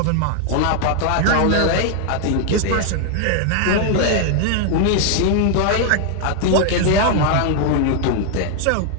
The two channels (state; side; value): different; both; correlation 0.00